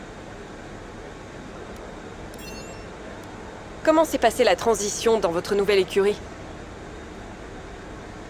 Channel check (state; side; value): identical; both; correlation 1.00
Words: Comment s'est passée la transition dans votre nouvelle écurie?